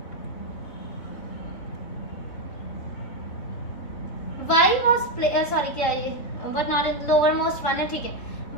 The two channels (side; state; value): right; late; 3.6 ms